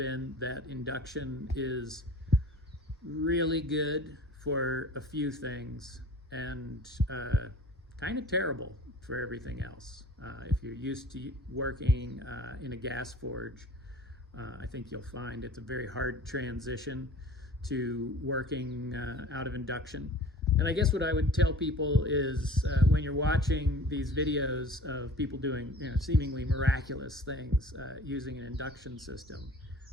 that induction is really good for a few things and kind of terrible for everything else. If you're used to working in a gas forge, I think you'll find it's a very hard transition to working out of induction. And I guess what I would tell people is when you're watching these videos of people doing seemingly miraculous things using an induction system,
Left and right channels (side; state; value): both; normal; correlation 0.44